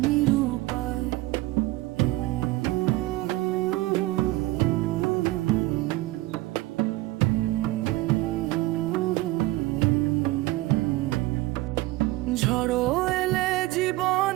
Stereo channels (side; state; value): left; quieter; 18.7 dB